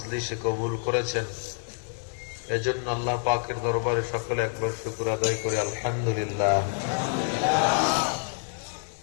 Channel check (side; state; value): right; silent; 60 dB below the other